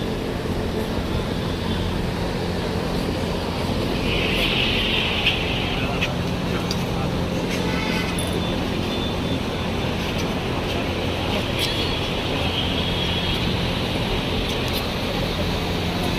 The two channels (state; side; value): identical; both; correlation 1.00